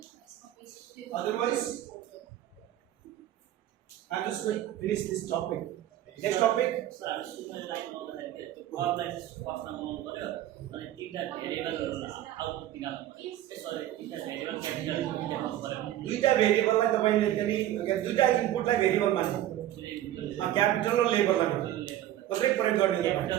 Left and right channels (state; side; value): quieter; left; 12.8 dB